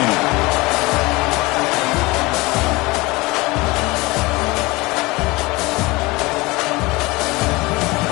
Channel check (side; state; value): right; quieter; 22.9 dB